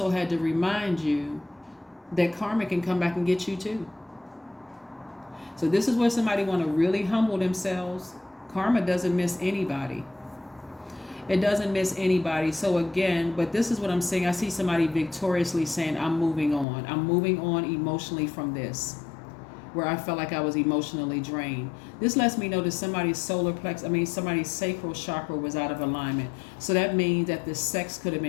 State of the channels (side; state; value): right; drops out; at 16.7 s